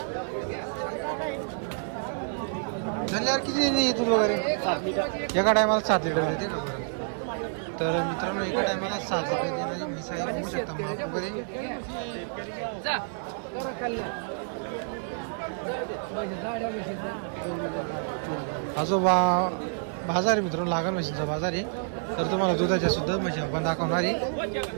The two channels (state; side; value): silent; left; digital silence